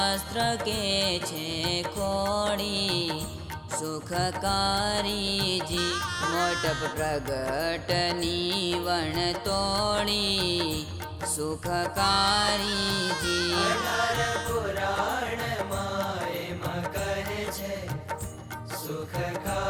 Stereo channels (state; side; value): identical; both; correlation 1.00